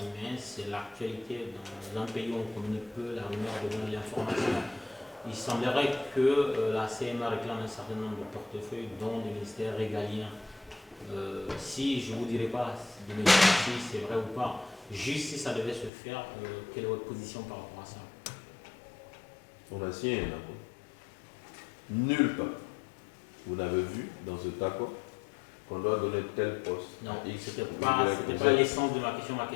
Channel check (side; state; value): right; drops out; at 15.9 s